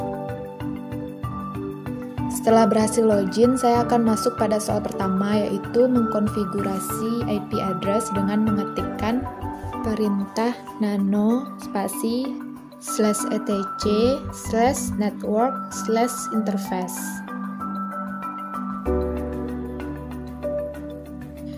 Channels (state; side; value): identical; both; correlation 1.00